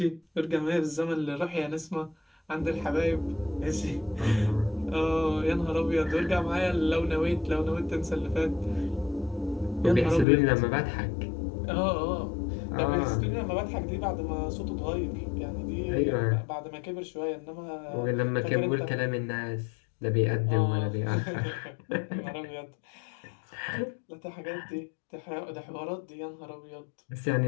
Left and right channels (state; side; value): drops out; right; at 10.2 s